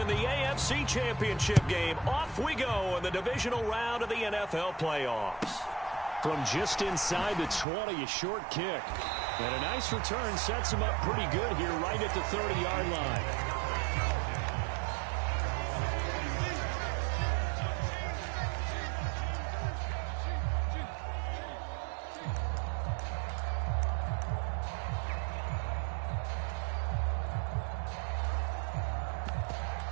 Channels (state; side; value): drops out; left; at 7.7 s